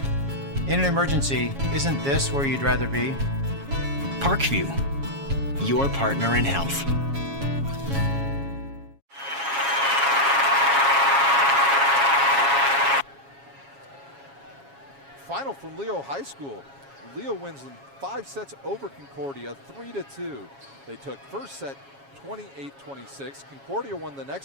In an emergency, isn't this where you'd rather be? Parkview, your partner in health. Final from Leo High School. Leo wins in 5 sets over Concordia, 3-2. They took first set 28-26. Concordia won the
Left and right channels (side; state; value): left; late; 7.3 ms